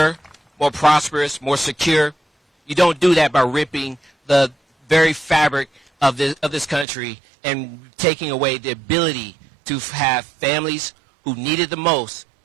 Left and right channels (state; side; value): drops out; left; at 6.9 s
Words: more prosperous, more secure, you don't do that by ripping the very fabric of this country and taking away the ability to have families who need it the most